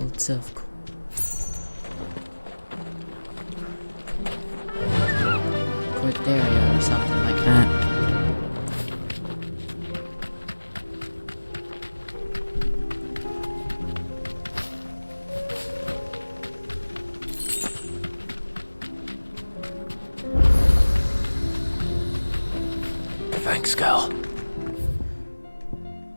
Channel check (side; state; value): both; inverted; correlation -1.00